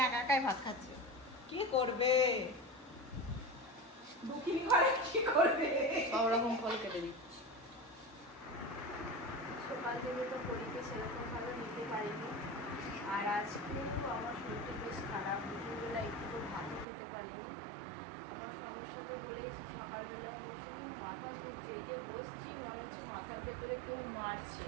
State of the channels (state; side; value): drops out; left; at 16.9 s